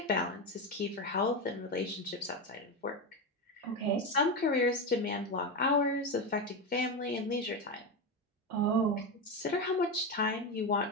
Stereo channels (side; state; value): both; normal; correlation 0.15